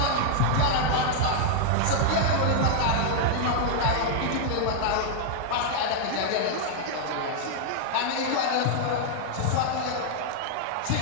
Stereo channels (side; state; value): both; different; correlation -0.01